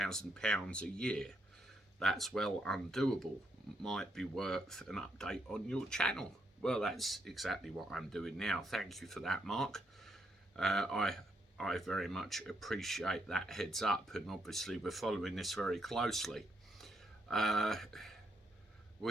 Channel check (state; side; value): normal; both; correlation 0.77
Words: a year. That's well undoable. Might be worth an update on your channel." Well, that's exactly what I'm doing now. Thank you for that, Mark. I very much appreciate that heads up, and obviously we're following this very closely.